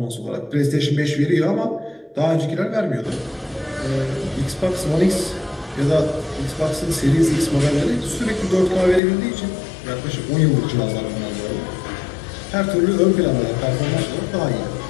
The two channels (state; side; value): drops out; right; at 9.0 s